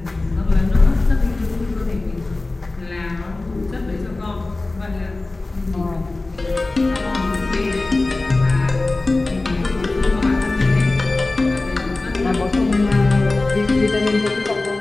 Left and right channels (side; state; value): right; quieter; 3.1 dB